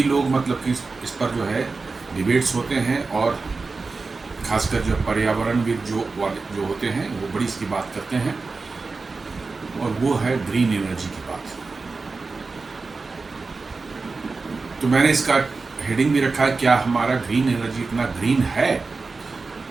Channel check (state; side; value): quieter; left; 4.1 dB